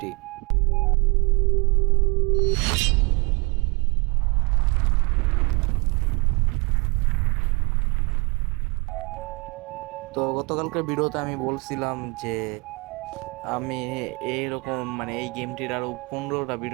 তো গতকালকার ভিডিওতে আমি বলছিলাম যে আমি এইরকম এই গেমটির আরো 15টা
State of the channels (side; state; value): left; quieter; 28.6 dB